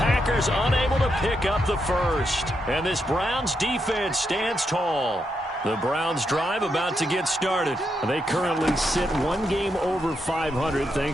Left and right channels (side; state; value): both; normal; correlation 0.82